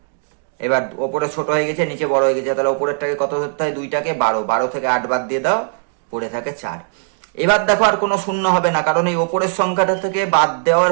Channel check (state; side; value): silent; left; digital silence